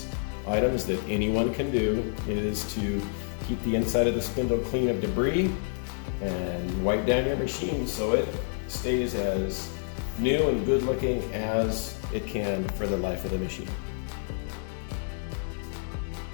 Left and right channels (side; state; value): right; silent; 59 dB below the other